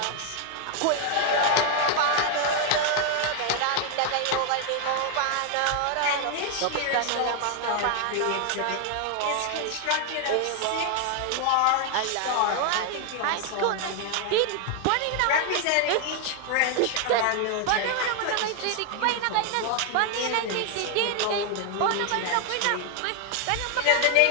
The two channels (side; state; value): both; different; correlation 0.00